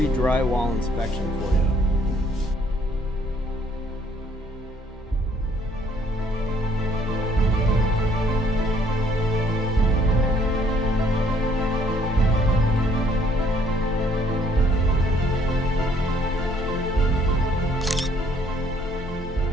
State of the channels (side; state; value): both; normal; correlation 0.64